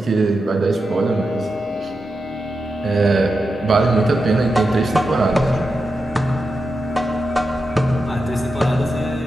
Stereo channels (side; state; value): both; normal; correlation 0.89